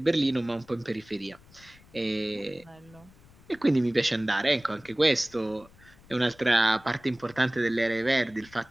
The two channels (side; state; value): left; noise; rumble, 25 dB below the sound